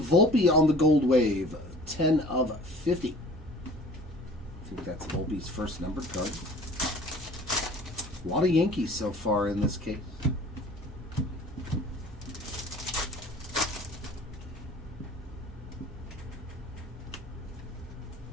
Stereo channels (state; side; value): normal; both; correlation 0.47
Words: on the Gold Wave, 10 of 50. I think that's Volpe's first numbered card. A lot of Yankees so far in this case.